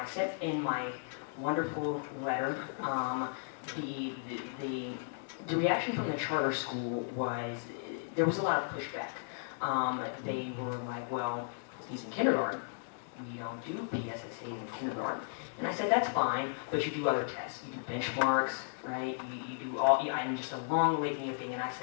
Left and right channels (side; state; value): right; silent; digital silence